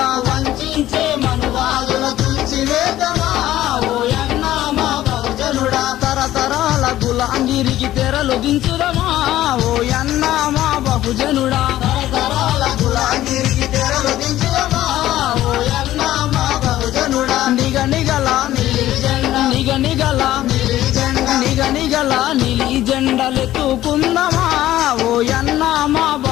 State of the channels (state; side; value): quieter; right; 14.1 dB